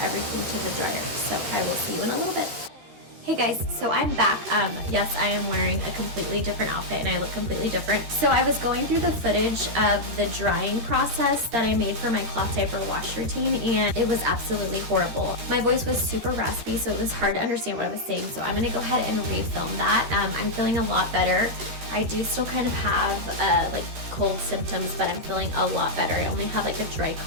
everything to the dryer. So I will see you in a little bit. Hey guys, so I'm back. Yes, I am wearing a completely different outfit and I look completely different. So I was going through the footage of the drying process that I made for my cloth diaper wash routine, and it was absolutely horrible. My voice was super raspy, so it was hard to understand what I was saying. So I'm going to go ahead and refilm that. I'm feeling a lot better. I do still kind of have like cold symptoms, but I'm feeling a lot better. I only have like a dry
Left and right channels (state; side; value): late; left; 13 ms